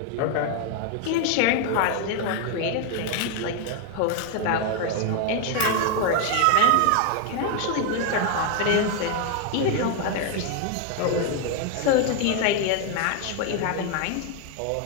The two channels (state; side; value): different; both; correlation 0.01